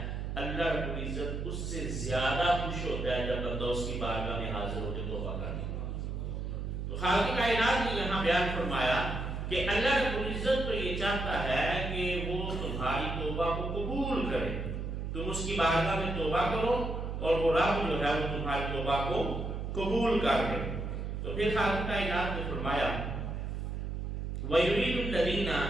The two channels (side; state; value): right; noise; hum, 4 dB below the sound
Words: اللہ رب العزت اس سے زیادہ خوش ہوتا ہے جب بندہ اس کی بارگاہ میں حاضر ہو کے توبہ کرنے۔ تو خالق کائنات نے یہاں بیان فرمایا کہ اللہ رب العزت تو یہ چاہتا ہے کہ وہ تمہاری توبہ کو قبول کرے، تم اس کی بارگاہ میں توبہ کرو اور وہ رب جو ہے وہ تمہاری توبہ کو قبول کر لے۔ تو پھر خالق کائنات نے فرمایا وَيُرِيدُ الَّذِينَ